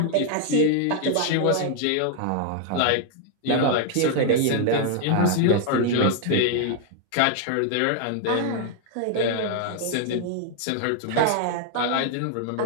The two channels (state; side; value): different; both; correlation 0.00